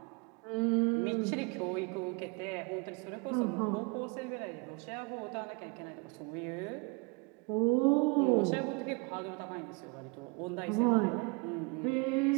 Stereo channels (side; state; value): left; quieter; 28.7 dB